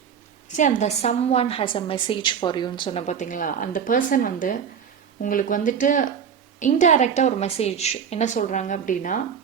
அந்த someone has a message for யூன்னு சொன்ன பார்த்தீங்களா, அந்த பர்சன் வந்து உங்களுக்கு வந்துட்டு இன்டைரக்டாக ஒரு மெசேஜ் என்ன சொல்கிறாங்க அப்படின்னா,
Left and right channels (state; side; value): quieter; left; 7.4 dB